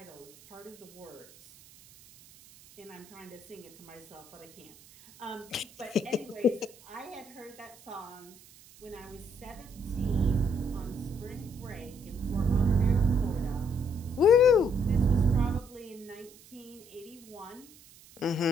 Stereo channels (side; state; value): right; noise; hiss, 23 dB below the sound